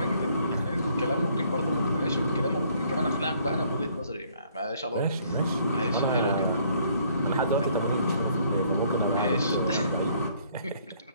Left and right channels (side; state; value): both; inverted; correlation -0.63